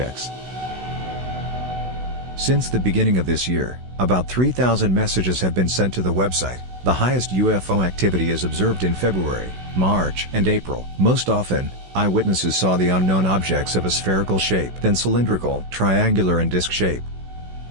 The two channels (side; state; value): left; late; 16 ms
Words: Since the beginning of this year, about 3,000 messages have been sent to the website. The highest UFO activity is observed in February, March, and April. Most often, eyewitnesses saw the unknown objects of a spherical shape, then cylindrical, triangular, and disc shape.